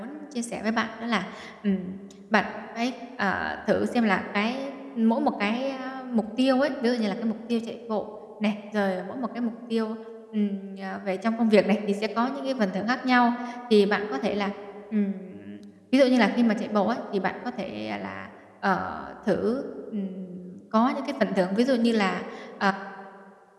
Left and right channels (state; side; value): identical; both; correlation 1.00